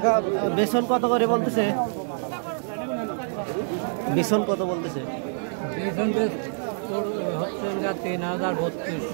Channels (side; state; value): left; silent; 61 dB below the other